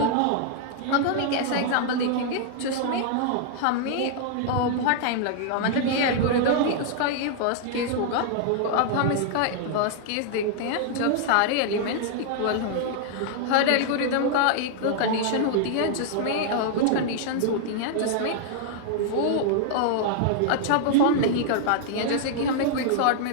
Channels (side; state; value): both; different; correlation -0.01